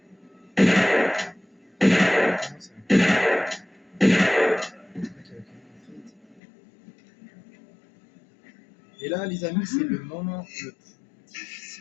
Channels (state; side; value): drops out; right; at 6.4 s